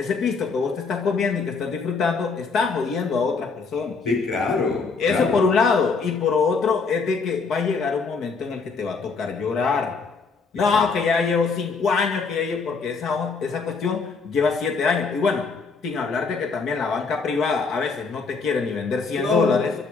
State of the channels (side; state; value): right; quieter; 4.7 dB